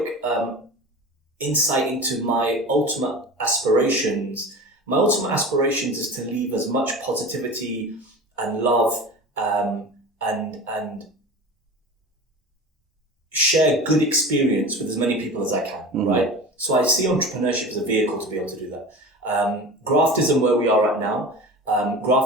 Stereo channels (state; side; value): normal; both; correlation 0.33